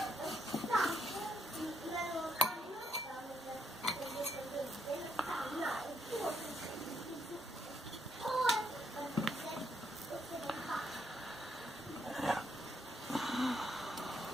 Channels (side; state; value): both; normal; correlation 0.75